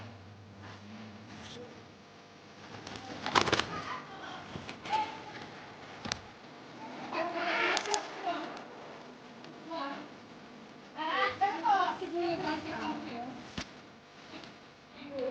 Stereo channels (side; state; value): both; identical; correlation 1.00